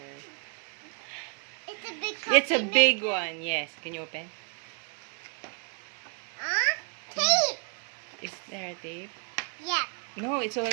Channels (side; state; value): left; quieter; 38.3 dB